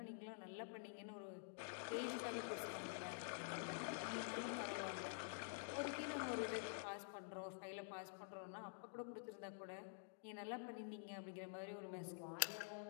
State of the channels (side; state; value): right; silent; digital silence